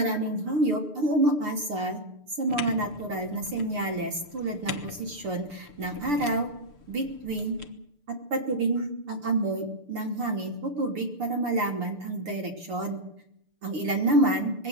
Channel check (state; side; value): late; left; 6.8 ms